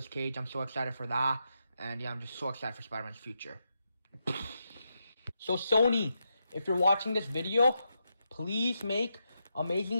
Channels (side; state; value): both; inverted; correlation -0.85